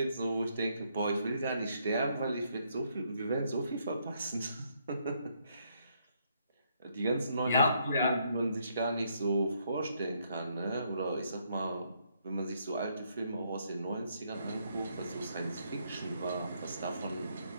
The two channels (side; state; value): both; inverted; correlation -0.73